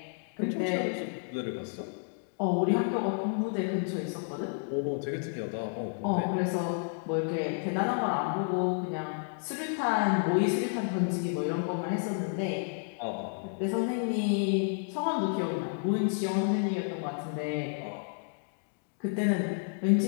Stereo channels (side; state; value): right; silent; digital silence